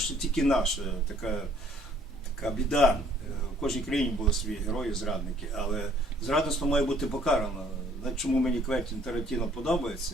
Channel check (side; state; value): both; normal; correlation 0.60